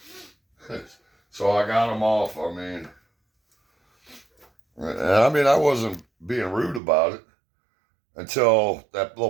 So I got them off. I wasn't being rude about it until that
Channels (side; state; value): left; drops out; at 6.8 s